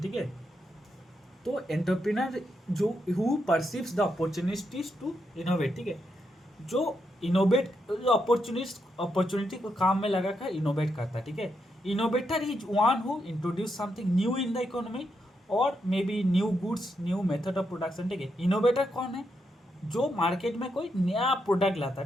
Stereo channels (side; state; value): both; normal; correlation 0.81